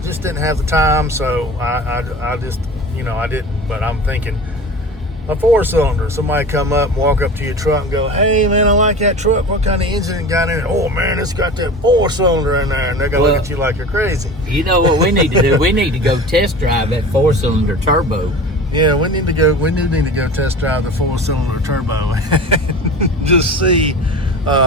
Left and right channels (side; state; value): both; normal; correlation 0.35